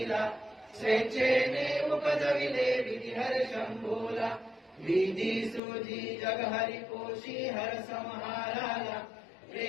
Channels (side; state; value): right; drops out; at 5.6 s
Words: स्वेच्छेने उपजविले विधी हर शंभोला विधी सुधी जग हरि पोषी हर संहाराला